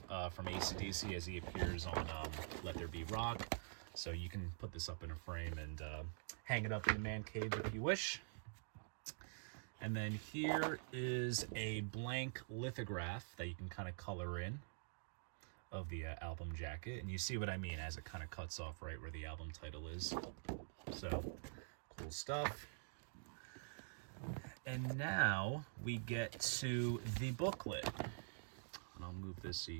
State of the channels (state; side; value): silent; left; digital silence